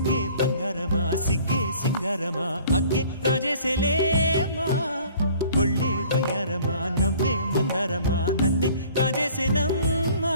బంగారమా సిగ్గే సింగారమా అగ్గే రాజేసేలేమా ఒళ్ళే వయ్యారమా నవ్వే మందారమా నన్నే కాజేసేనమ్మా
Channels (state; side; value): inverted; both; correlation -0.52